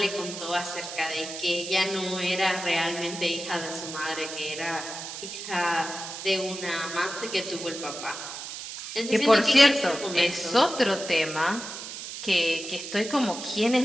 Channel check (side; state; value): right; noise; hiss, 9 dB below the sound